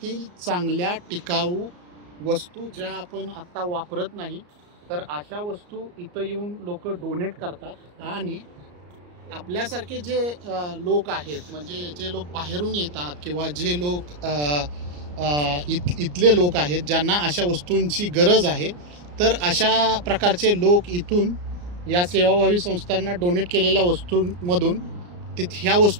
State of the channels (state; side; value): late; left; 34 ms